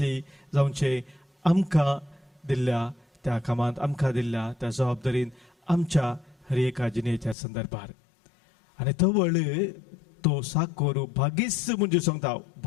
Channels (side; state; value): right; drops out; at 7.4 s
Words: जावचें आमकां दिल्ल्या त्या कामांत आमकां दिल्ल्या त्या जबाबदारीन आमच्या हर एका जिणेच्या संदर्भार आनी तो वळ तो साकोरू भागीस म्हणजे सांगता